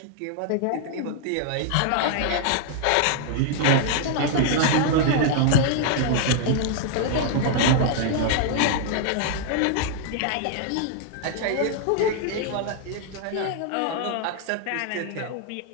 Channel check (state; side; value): different; both; correlation 0.00